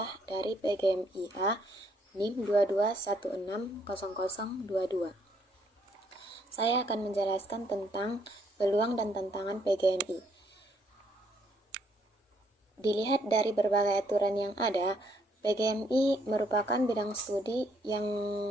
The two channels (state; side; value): normal; both; correlation 0.69